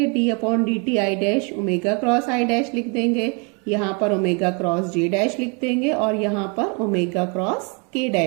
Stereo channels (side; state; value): left; quieter; 33.9 dB